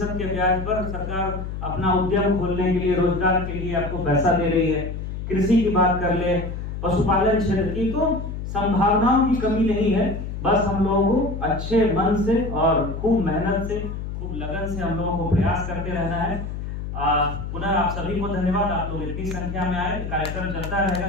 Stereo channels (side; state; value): left; noise; hum, 6 dB below the sound